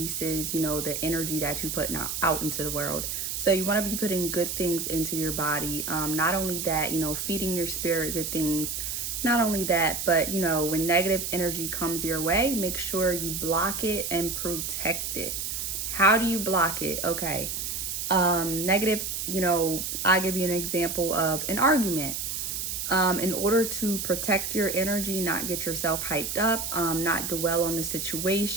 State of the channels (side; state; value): right; noise; hiss, 3 dB below the sound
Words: the energy that you put out into the world. So you want to be putting good things into your body. Not only that, feeding your spirit good things. Not only that, but when negative energy comes your way, make sure you block it and protect it. How do you block it? Okay. Negative, I'll give you an example of an argument. In order to protect your energy, not get yourself hyped up, not dwell on the